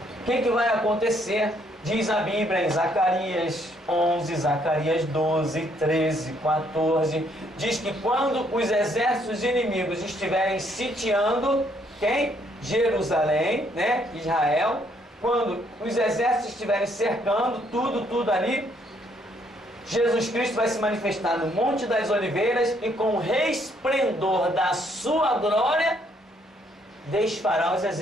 O que vai acontecer? Diz a Bíblia em Zacarias 11, Zacarias 12, 13, 14, diz que quando os exércitos inimigos estiverem sitiando, quem? Jerusalém, né? Israel. Quando os exércitos estiverem cercando tudo ali, Jesus Cristo vai se manifestar no Monte das Oliveiras e com o resplendor da sua glória desfará os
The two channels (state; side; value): normal; both; correlation 0.69